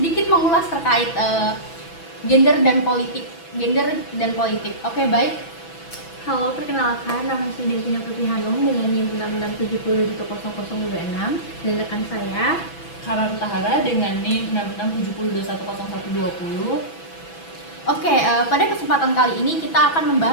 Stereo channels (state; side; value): late; right; 6.1 ms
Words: mengulas terkait gender dan politik. Oke, baik. Halo, perkenalkan, nama saya Devina Putri Hanum dengan NIM 6670100026 dan rekan saya Karan Tahara dengan NIM 6670210120. Oke, pada kesempatan kali ini kita akan